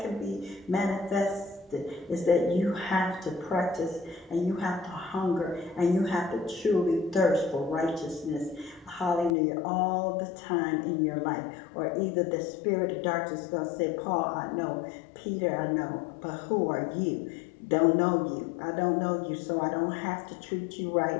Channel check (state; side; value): drops out; right; at 9.3 s